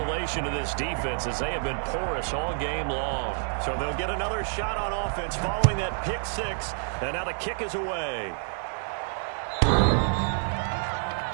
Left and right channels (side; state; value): left; silent; 57 dB below the other